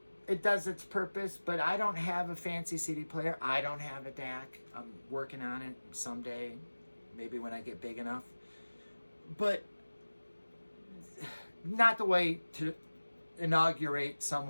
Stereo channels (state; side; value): inverted; both; correlation -1.00